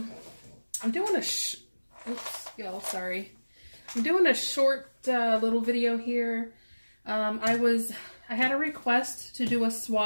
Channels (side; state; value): both; inverted; correlation -1.00